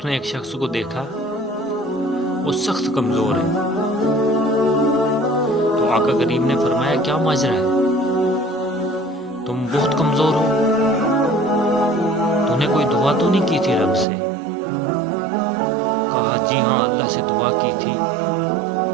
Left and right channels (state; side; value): drops out; left; at 14.1 s